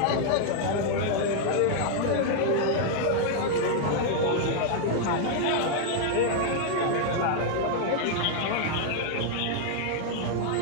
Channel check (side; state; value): both; different; correlation 0.00